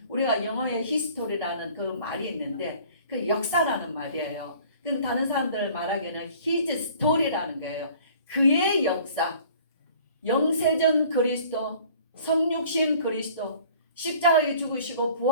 우리가 영어에 히스토리라는 그 말이 있는데 그 역사라는 말이에요. 그럼 다른 사람들 말하기에는 his story라는 거예요. 그의 역사, 영세전 그리스도, 성육신 그리스도, 십자가에 죽으시고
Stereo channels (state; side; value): inverted; both; correlation -0.51